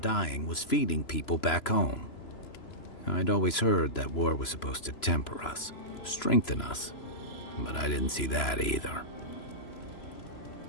dying was feeding people back home. I'd always heard that war was supposed to temper us, strengthen us, but I didn't see that either.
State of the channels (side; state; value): right; late; 3.0 ms